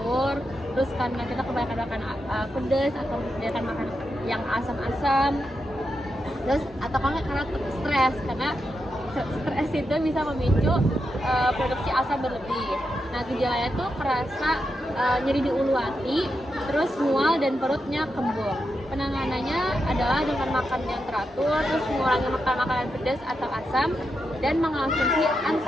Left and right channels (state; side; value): normal; both; correlation 0.86